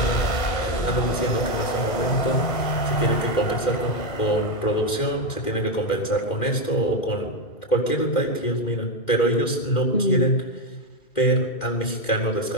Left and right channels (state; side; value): late; right; 2.1 ms